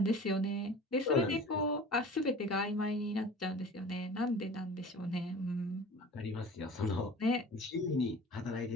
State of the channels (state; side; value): normal; both; correlation 0.41